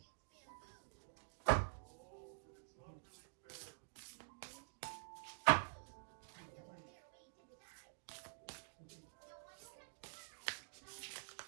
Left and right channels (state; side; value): silent; left; digital silence